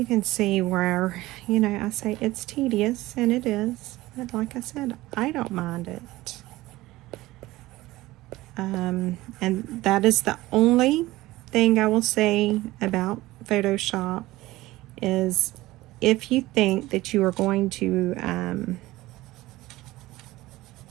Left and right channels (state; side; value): quieter; left; 18.1 dB